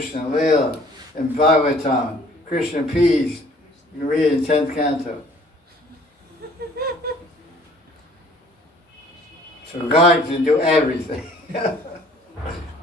Lila, in Bhagavatam, Krishna pees. You can read it in 10th canto. So God can do everything.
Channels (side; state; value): both; normal; correlation 0.55